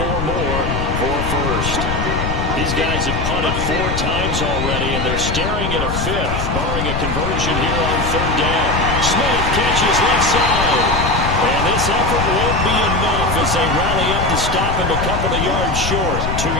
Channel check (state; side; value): noise; left; rumble, 3 dB below the sound